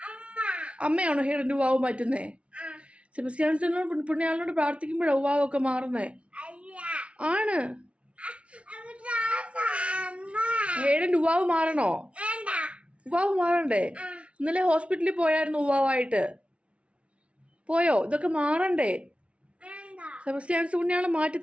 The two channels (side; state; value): left; late; 0.061 ms